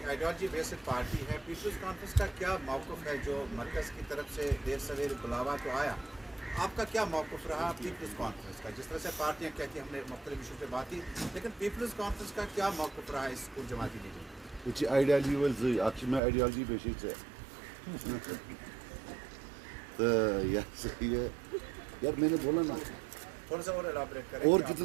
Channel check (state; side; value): drops out; left; at 16.2 s